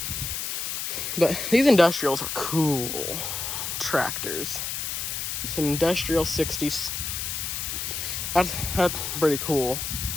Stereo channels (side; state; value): left; noise; hiss, 3 dB below the sound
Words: But these industrials are cool tractors. It's an industrial 60s. That's pretty cool.